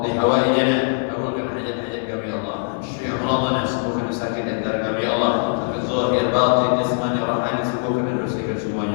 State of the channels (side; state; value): right; silent; digital silence